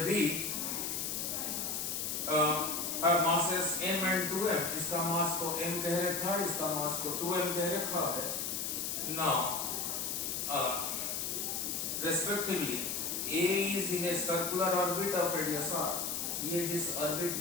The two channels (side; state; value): left; noise; hiss, 2 dB below the sound